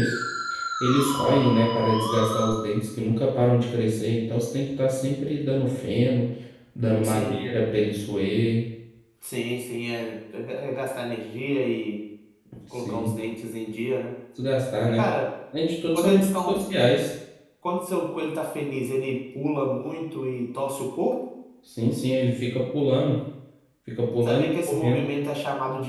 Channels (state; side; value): identical; both; correlation 1.00